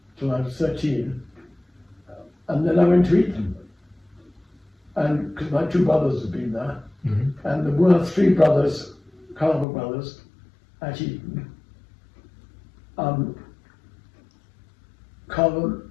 till I was 13. And then I went to Eton, and because my 2 brothers had been there, mm-hmm. and there were 3 brothers, CARVER brothers, at Eton. CARVER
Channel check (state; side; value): drops out; right; at 9.7 s